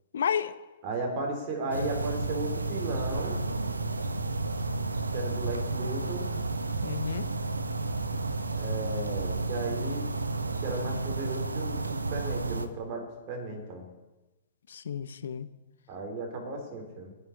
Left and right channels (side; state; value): both; inverted; correlation -0.62